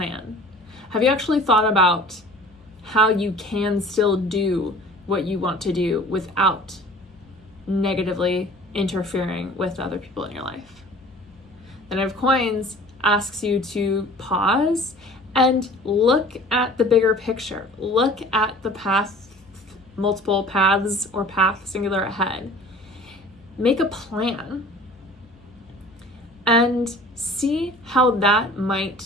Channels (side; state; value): both; normal; correlation 0.46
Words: Have you actually thought about how you can still do what you want to do without negatively interfering with other people in your life? The Knight of Coins asks you to pause and look at the bigger picture. Look at the path, multiple paths or path singular ahead. Make a plan and see how that